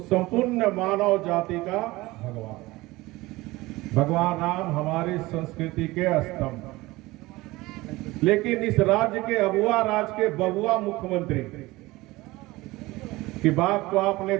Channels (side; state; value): left; quieter; 20.1 dB